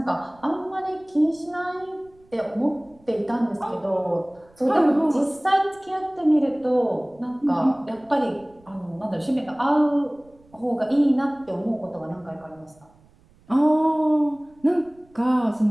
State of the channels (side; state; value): right; noise; rumble, 30 dB below the sound